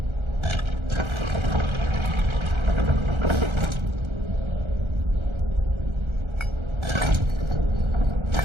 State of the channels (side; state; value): left; late; 1.3 ms